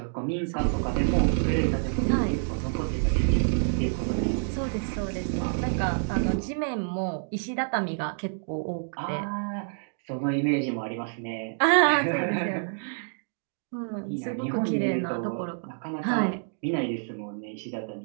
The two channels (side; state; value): left; silent; digital silence